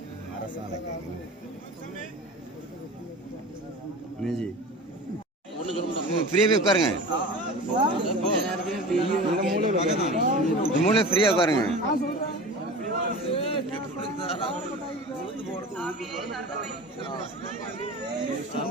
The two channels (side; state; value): both; normal; correlation 0.35